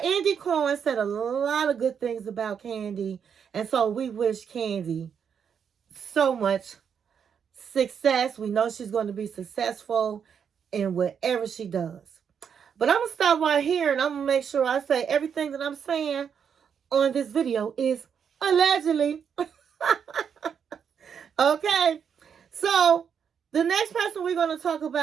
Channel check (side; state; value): left; quieter; 7.4 dB